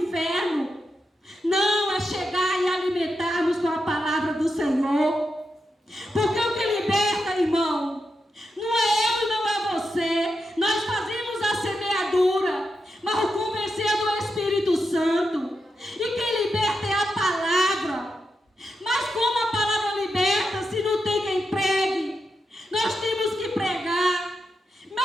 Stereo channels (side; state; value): both; normal; correlation 0.86